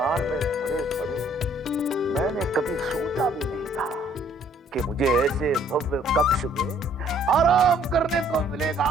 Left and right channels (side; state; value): both; normal; correlation 0.61